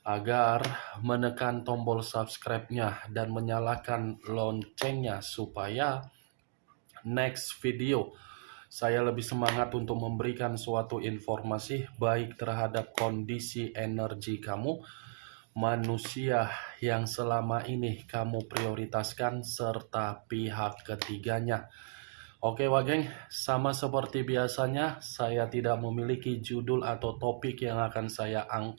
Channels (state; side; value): silent; left; digital silence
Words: agar menekan tombol subscribe-nya dan menyalakan loncengnya supaya next video saya lebih semangat untuk memberikan suatu informasi baik terhadap kondisi energi kamu, manusia yang selama ini kamu prioritaskan, serta pihak ketiganya. Oke Wageng, sama seperti biasanya, saya tidak memiliki judul atau topik yang akan saya